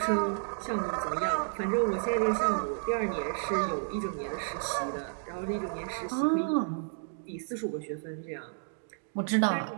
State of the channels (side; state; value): left; silent; digital silence